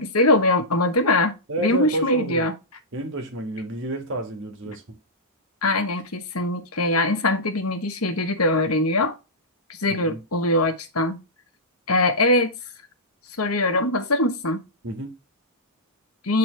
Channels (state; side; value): normal; both; correlation -0.12